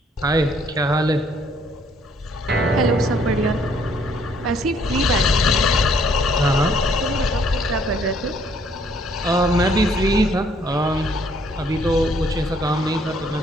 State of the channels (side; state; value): both; normal; correlation 0.64